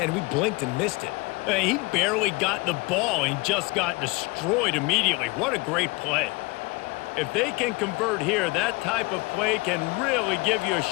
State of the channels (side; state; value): right; quieter; 24.8 dB